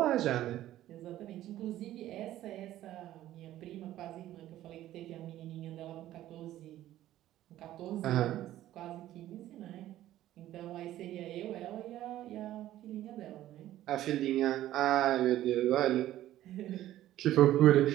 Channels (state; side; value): quieter; left; 13.7 dB